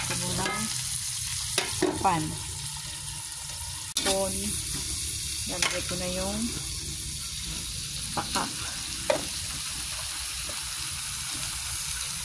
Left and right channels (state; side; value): identical; both; correlation 1.00